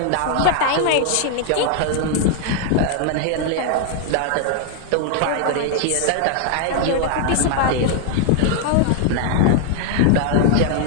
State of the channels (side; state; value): both; different; correlation 0.00